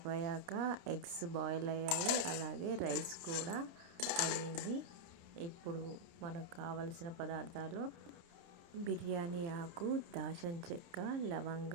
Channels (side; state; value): left; late; 29 ms